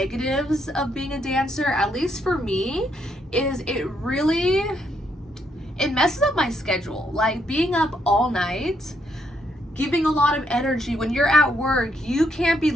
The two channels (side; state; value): both; normal; correlation 0.76